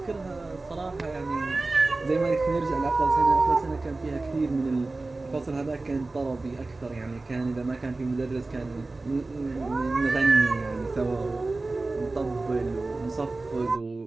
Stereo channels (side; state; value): left; quieter; 3.3 dB